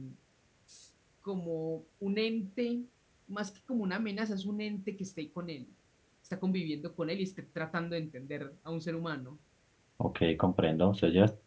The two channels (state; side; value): identical; both; correlation 1.00